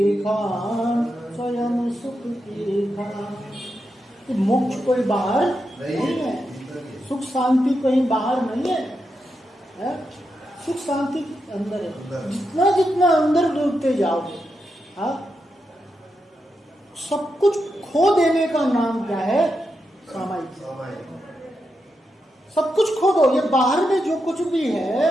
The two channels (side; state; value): both; normal; correlation 0.86